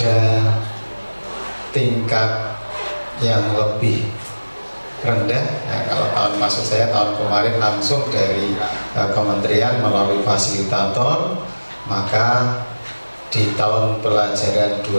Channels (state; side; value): inverted; both; correlation -1.00